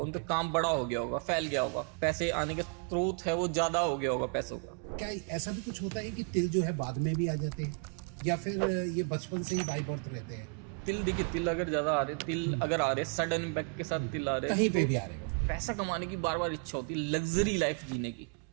उनका काम बड़ा हो गया होगा, फैल गया होगा, पैसे आने का स्रोत है वो ज्यादा हो गया होगा पैसों का। क्या ऐसा भी कुछ होता है कि तिल जो है बाद में भी आ जाते हैं या फिर ये बचपन से ही बाई बर्थ रहते हैं? तिल देखिए, तिल अगर ज्यादा आ रहे, तिल अगर आ रहे सडन इम्पैक्ट के साथ तिल आ रहे, कहीं पे भी आ रहे हैं, पैसा कमाने की बार बार इच्छा होती है, लग्जरी लाइफ जीने की,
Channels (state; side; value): quieter; left; 38.7 dB